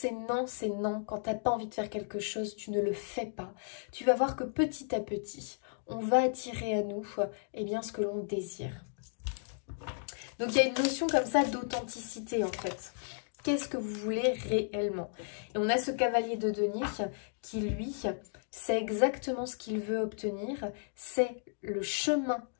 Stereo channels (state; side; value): silent; right; digital silence